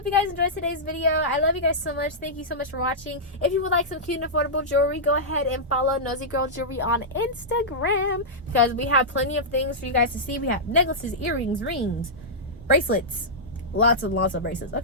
you guys enjoyed today's video. I love you guys so much. Thank you so much for watching. If you would like some cute and affordable jewelry, go ahead and follow Nosy Girl Jewelry on Instagram, because we have plenty of things for you guys to see. We have necklaces, earrings, rings, bracelets, lots and lots of bracelets.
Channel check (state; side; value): normal; both; correlation -0.12